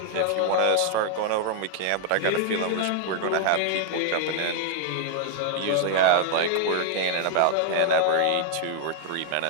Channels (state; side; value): different; both; correlation 0.00